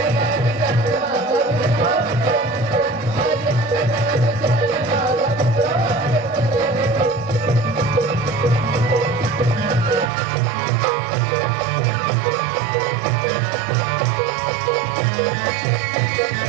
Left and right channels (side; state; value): left; drops out; at 10.1 s